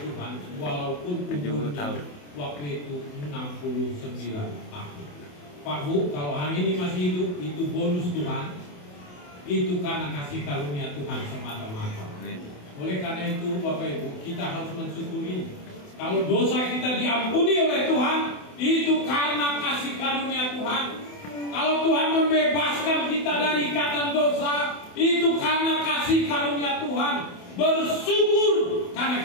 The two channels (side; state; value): right; late; 28 ms